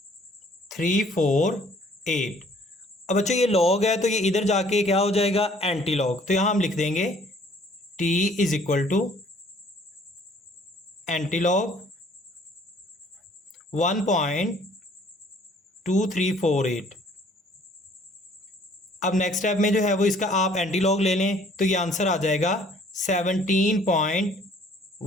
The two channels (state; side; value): normal; both; correlation 0.58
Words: अब बच्चों ये log है तो ये इधर जाके क्या हो जाएगा, एंटी लॉग, तो यहाँ हम लिख देंगे t is equal to anti log 1.2348। अब नेक्स्ट स्टेप में जो है वो इसका आप एंटी लॉग ले लें तो ये आंसर आ जाएगा